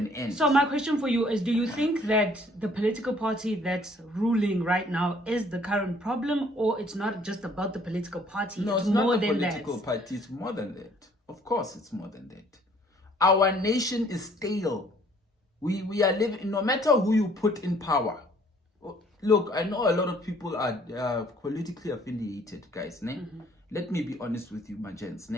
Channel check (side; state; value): both; normal; correlation 0.60